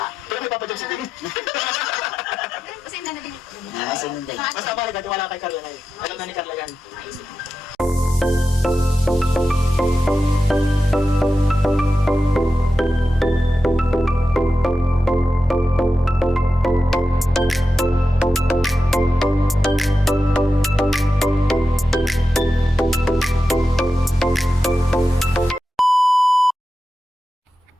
Pero may Papa Jones din. Kasi hindi na din. Basta mahalaga, tiwala kay Carla na yun. Alam na ni Carla yan. Maisip.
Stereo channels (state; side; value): normal; both; correlation 0.90